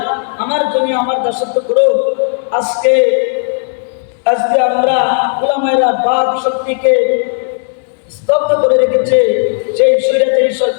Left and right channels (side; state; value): right; silent; 71 dB below the other